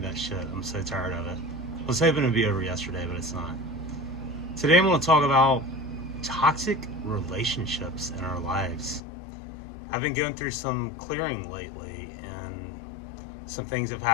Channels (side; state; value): right; drops out; at 9.0 s